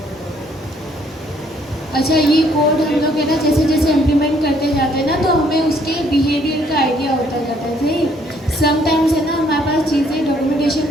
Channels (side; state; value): both; normal; correlation 0.65